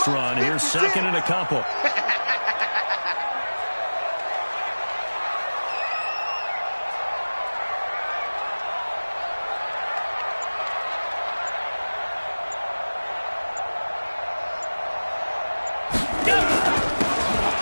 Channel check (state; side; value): inverted; both; correlation -1.00